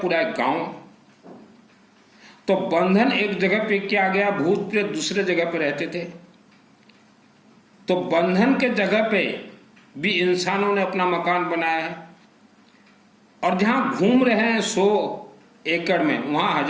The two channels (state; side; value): identical; both; correlation 1.00